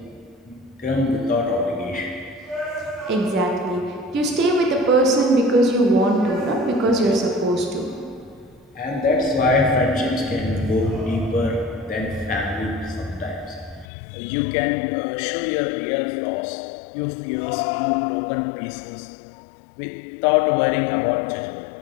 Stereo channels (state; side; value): drops out; right; at 13.9 s